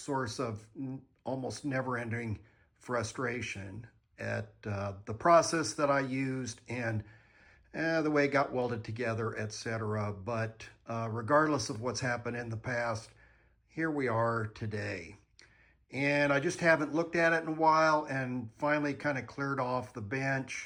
of almost never-ending frustration at the process that I used and the way it got welded together, etc. But regardless of what's happened in the past, here we are today. And I just haven't looked at it in a while and finally kind of cleared off the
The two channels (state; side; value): identical; both; correlation 1.00